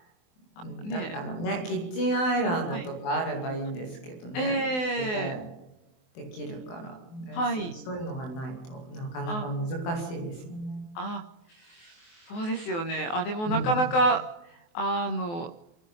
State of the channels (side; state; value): right; late; 23 ms